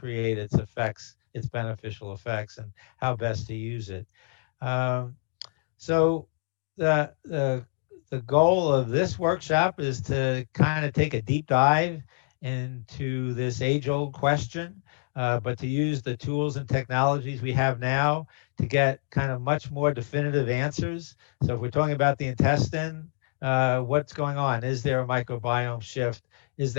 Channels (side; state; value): right; silent; digital silence